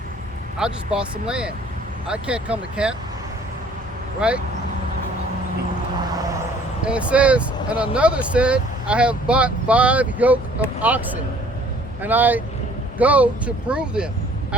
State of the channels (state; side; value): normal; both; correlation 0.56